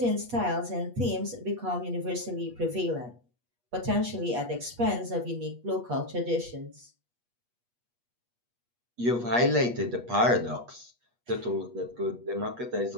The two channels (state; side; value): late; left; 8.3 ms